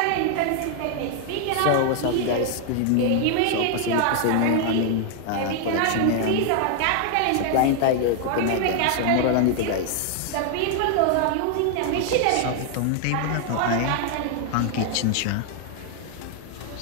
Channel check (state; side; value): different; both; correlation 0.00